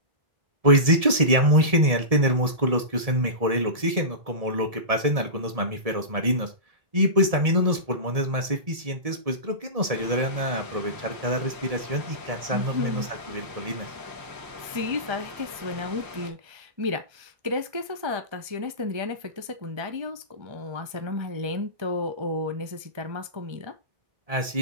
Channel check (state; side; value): late; left; 1.7 ms